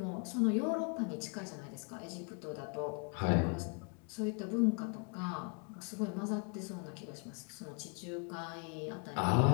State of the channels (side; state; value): right; quieter; 37.9 dB